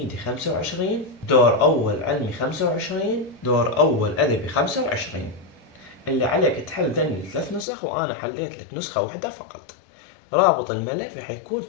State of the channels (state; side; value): drops out; right; at 7.7 s